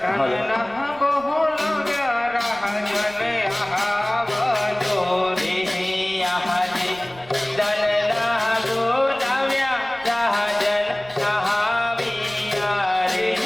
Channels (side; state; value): right; noise; rumble, 23 dB below the sound